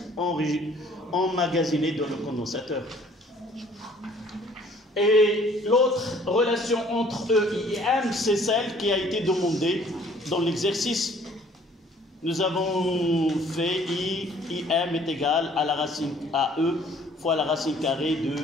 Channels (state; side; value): normal; both; correlation 0.57